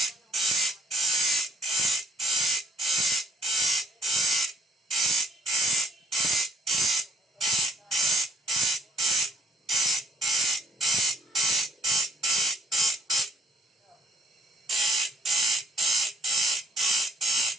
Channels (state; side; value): normal; both; correlation 0.65